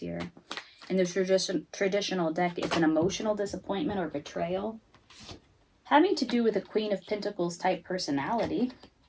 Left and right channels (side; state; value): both; identical; correlation 1.00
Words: In the traditional deck, it's an emotional disappointment or betrayal, having to do with a Queen of Pentacles type personality.